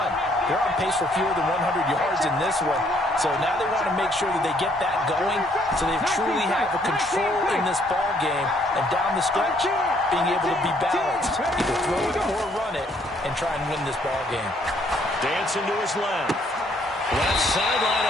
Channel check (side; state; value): both; normal; correlation 0.66